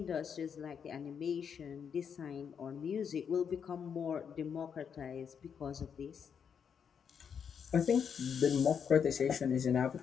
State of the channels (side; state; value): right; quieter; 7.2 dB